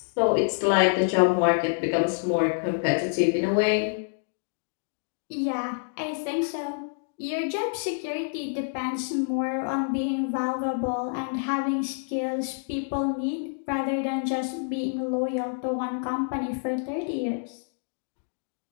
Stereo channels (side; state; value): right; silent; digital silence